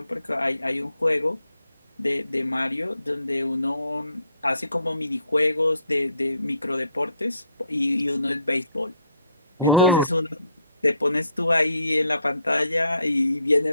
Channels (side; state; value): both; inverted; correlation -0.69